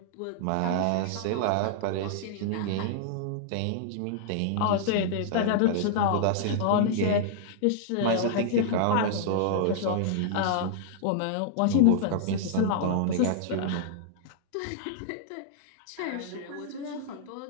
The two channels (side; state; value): both; different; correlation -0.01